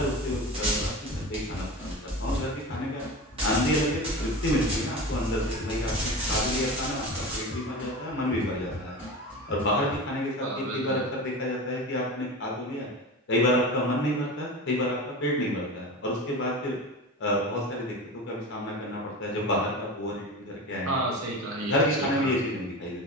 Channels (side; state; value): both; normal; correlation 0.29